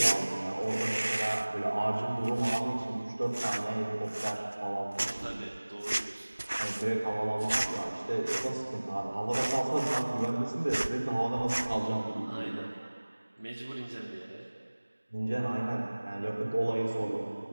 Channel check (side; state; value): both; inverted; correlation -1.00